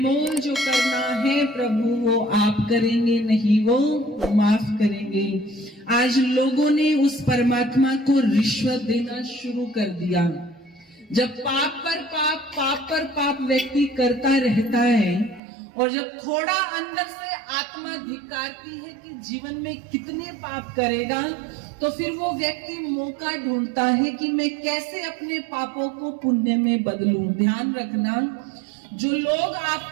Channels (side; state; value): left; drops out; at 15.4 s